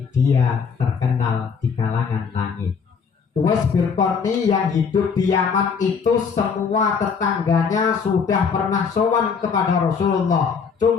dia terkenal di kalangan langit. Uwais bin Qarni yang hidup di Yaman itu semua tetangganya sudah pernah sowan kepada Rasulullah.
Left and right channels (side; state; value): right; quieter; 5.9 dB